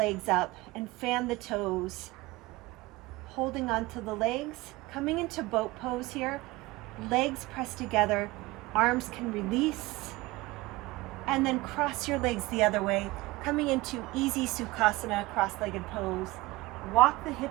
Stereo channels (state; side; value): quieter; left; 20.6 dB